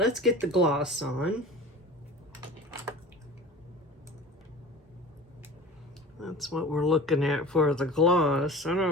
get the gloss on. That's what we're looking at for the gloss. I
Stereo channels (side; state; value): both; normal; correlation 0.39